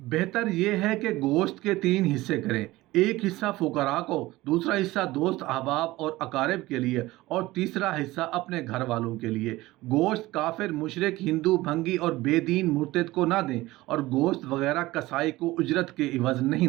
यह है कि गोश्त के 3 हिस्से करें, एक हिस्सा फुकरा को, दूसरा हिस्सा दोस्त अहबाब और अकारिब के लिए और तीसरा हिस्सा अपने घर वालों के लिए। गोश्त काफिर, मुशरिक, हिंदू, भंगी और बेदीन मुर्तद को ना दें और गोश्त वगैरह कसाई को उजरत के इवज़ नहीं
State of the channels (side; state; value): left; quieter; 18.5 dB